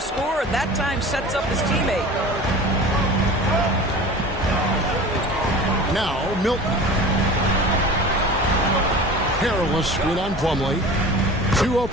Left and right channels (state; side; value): normal; both; correlation 0.38